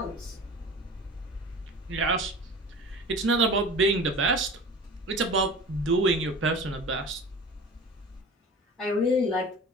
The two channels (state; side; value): normal; both; correlation 0.38